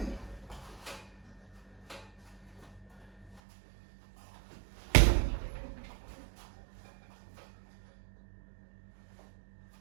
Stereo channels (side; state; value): left; drops out; at 3.4 s